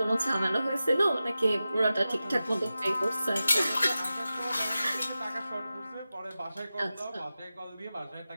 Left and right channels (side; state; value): both; inverted; correlation -0.93